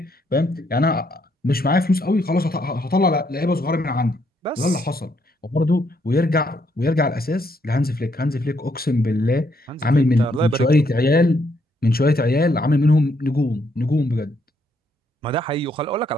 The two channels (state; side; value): normal; both; correlation 0.73